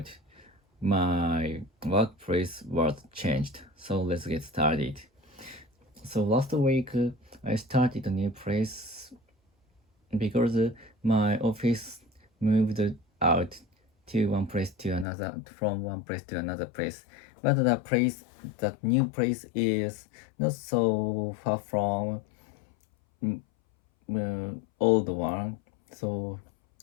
my workplace was changed. So let's get started. So last week I started a new place because my office moved out to one place to another, from one place to another place. But that new place is not so far from old one. So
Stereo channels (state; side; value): drops out; right; at 15.1 s